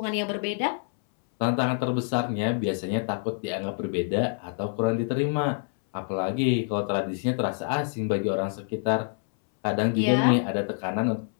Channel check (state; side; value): silent; right; 60 dB below the other